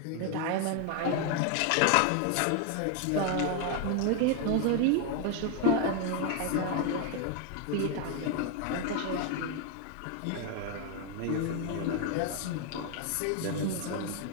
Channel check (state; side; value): different; both; correlation 0.00